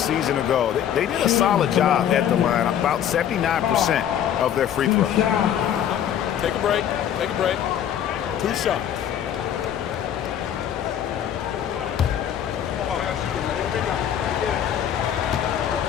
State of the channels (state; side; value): quieter; right; 9.8 dB